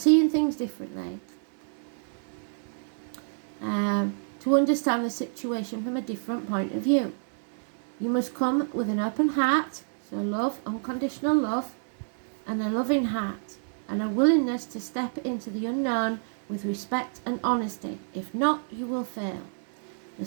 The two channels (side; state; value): left; silent; digital silence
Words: things differently. To understand the situation from a different point of view. You must come with an open heart, so love, unconditional love, and a loving heart, and a willingness to step into the unknown with respect and honesty. If not, you will fail. The